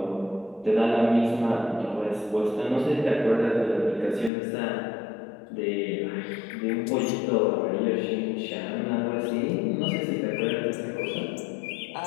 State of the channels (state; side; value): drops out; right; at 4.3 s